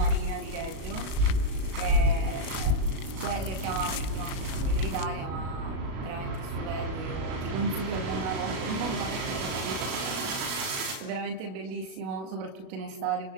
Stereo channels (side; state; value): left; late; 37 ms